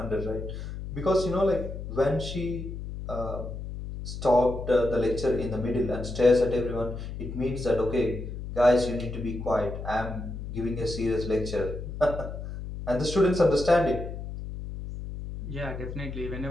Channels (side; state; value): left; noise; hum, 8 dB below the sound